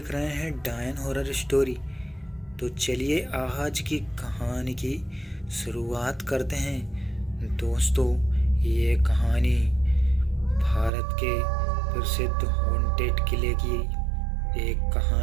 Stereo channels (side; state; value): left; drops out; at 10.9 s